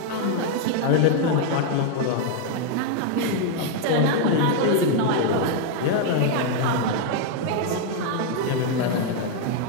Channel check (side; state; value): both; different; correlation 0.00